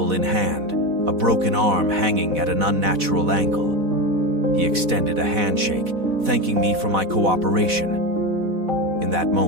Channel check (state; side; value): late; left; 4.1 ms